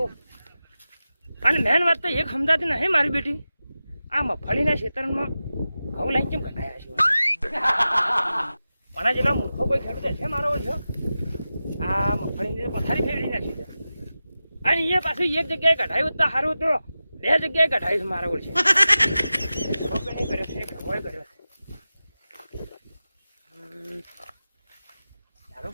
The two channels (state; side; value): inverted; both; correlation -0.94